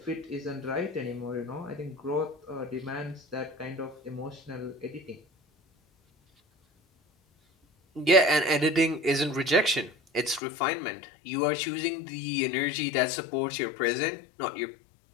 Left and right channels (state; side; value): drops out; right; at 10.4 s